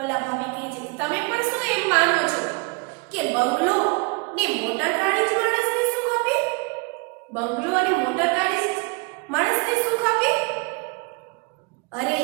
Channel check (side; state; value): left; quieter; 30.2 dB